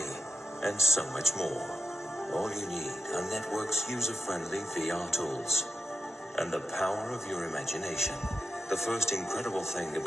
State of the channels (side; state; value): both; normal; correlation 0.89